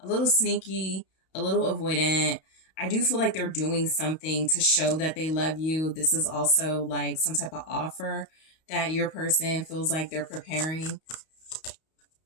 little sneaky, a little avoidant. I do feel like they're doing something to show that they love you. This is also like some type of offer that your person feels like they're preparing.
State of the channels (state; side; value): late; right; 32 ms